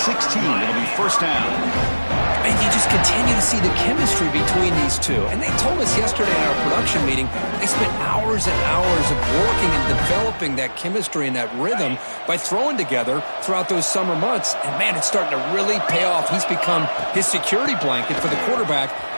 It'll be 1st down. And you just continue to see the chemistry between these two. And they told us yesterday in our production meeting, they spent hours and hours of working and developing that chemistry and that rhythm by throwing together throughout those summer months. And, man, it's starting to really pay off. He's become his security blanket for the quarterback,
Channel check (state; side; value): inverted; both; correlation -1.00